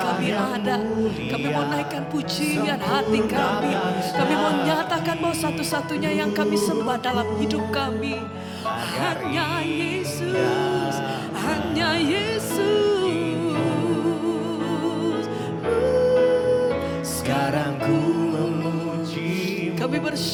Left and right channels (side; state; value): both; identical; correlation 1.00